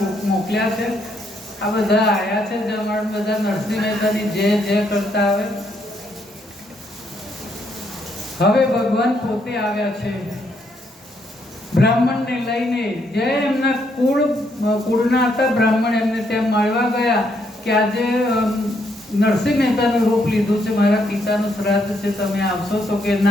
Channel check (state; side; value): normal; both; correlation 0.74